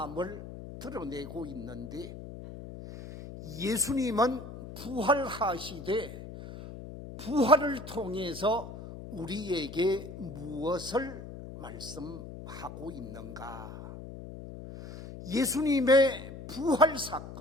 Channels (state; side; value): noise; left; hum, 12 dB below the sound